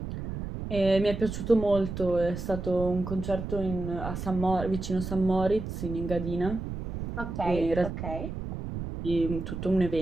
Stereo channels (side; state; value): right; noise; rumble, 6 dB below the sound